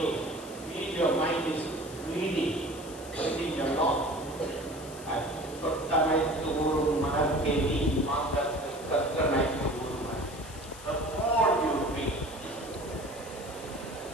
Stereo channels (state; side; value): noise; left; hiss, 17 dB below the sound